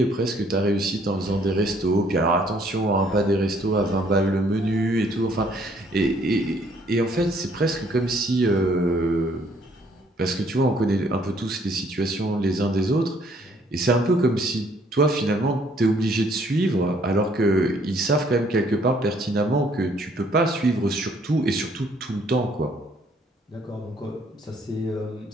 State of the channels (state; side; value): normal; both; correlation 0.64